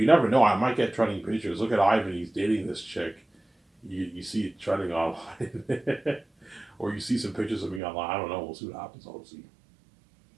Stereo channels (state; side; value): drops out; left; at 7.8 s